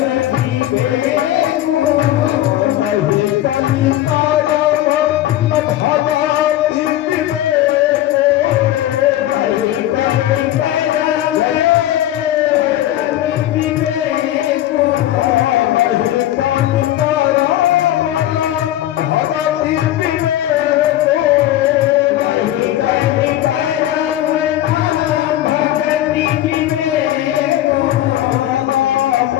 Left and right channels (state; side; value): quieter; right; 13.4 dB